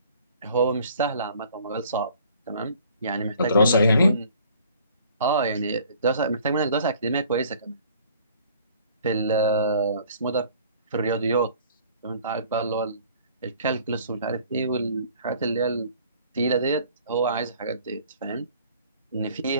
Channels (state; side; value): inverted; both; correlation -0.54